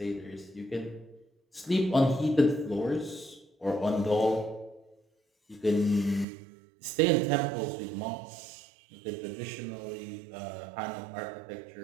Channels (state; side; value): drops out; left; at 6.2 s